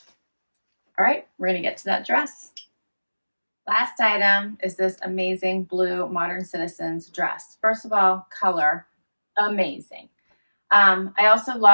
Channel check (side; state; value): both; inverted; correlation -1.00